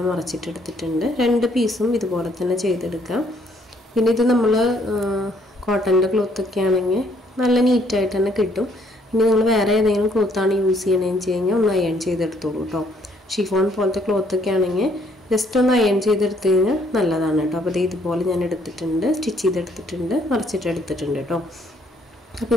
മറച്ചിട്ടെടുത്തിട്ടുണ്ട്. 2 പീസും ഇതുപോലെ തന്നെ ചെയ്തെടുക്കാം. പിന്നെ ഇത് നമ്മൾ കോട്ടൻ്റെ ക്ലോത്തൊക്കെ ആണെങ്കിൽ നല്ല നീറ്റായിട്ട് തന്നെ കിട്ടും. ഇനി നിങ്ങൾ വേറെ ഏതെങ്കിലും ക്ലോത്താണ് യൂസ് ചെയ്യണമെന്ന് വെച്ച് കഴിഞ്ഞാൽ ഒന്ന് അയൺ ചെയ്തെടുത്തോളൂ കേട്ടോ. ഷിഫോൺ പോലത്തെ ക്ലോത്തൊക്കെ ആണെങ്കിൽ ജസ്റ്റ് ഒന്ന് അയൺ ചെയ്തെടുത്ത് കഴിഞ്ഞാൽ നല്ലതാണ് കേട്ടോ. അപ്പോൾ ഇതുപോലെ ഞാൻ എടുത്തിട്ടുണ്ട്, സ്റ്റിച്ച് ചെയ്തെടുത്തിട്ടുണ്ട്, മറച്ചിട്ടെടുത്തിട്ടുണ്ട് കേട്ടോ. അപ്പോൾ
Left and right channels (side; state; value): both; normal; correlation 0.66